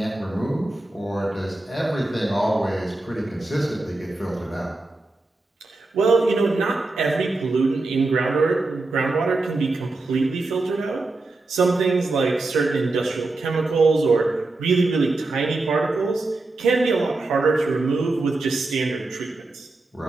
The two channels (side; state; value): left; quieter; 3.2 dB